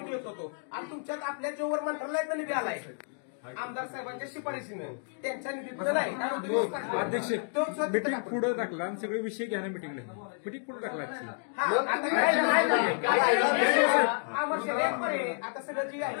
येत होतो. आणि तुमच्यात आपल्या जोवर मंत्रालयातला निधी आलाय आमदार साहेबांच्या शिफारशीनं, त्यांच्या निधीतलं नाही. अध्यक्ष मीटिंग पुढे टाकला आणि सगळे विषय घ्या ना मीटिंगला. मीटिंग पुढे टाकला आता सगळं जी आहे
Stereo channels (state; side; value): silent; right; 58 dB below the other